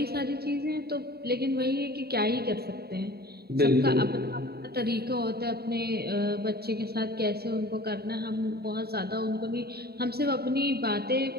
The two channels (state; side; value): late; left; 0.46 ms